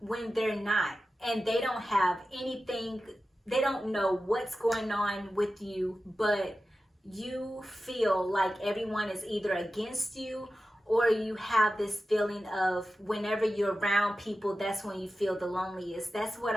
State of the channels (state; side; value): normal; both; correlation 0.93